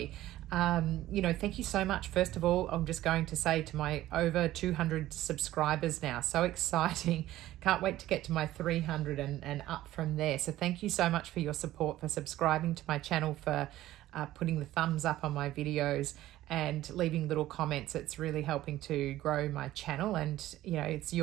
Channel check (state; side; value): quieter; left; 14.9 dB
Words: Thank you so much. First of all, I'm just going to say to my over 200 subscribers now, so exciting. Can't wait to get to my 300 and up from there. So thank you so much for your support, for subscribing to my channel, for putting the thumbs up on my videos and leaving little comments. It's really helping to grow my channel, and it's